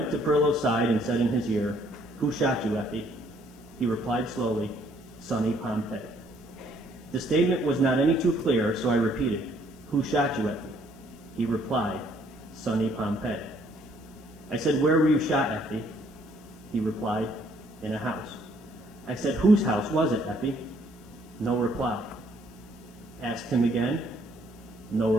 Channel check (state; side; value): noise; left; hiss, 29 dB below the sound